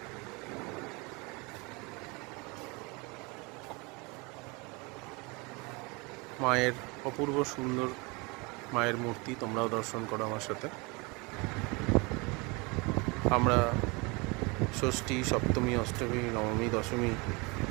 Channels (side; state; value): left; quieter; 27.7 dB